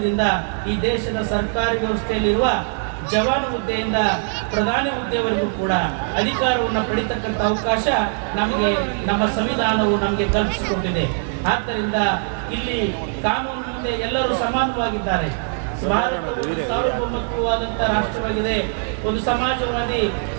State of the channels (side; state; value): left; silent; 58 dB below the other